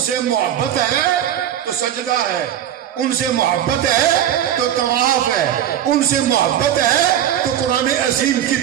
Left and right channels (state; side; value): quieter; left; 10.7 dB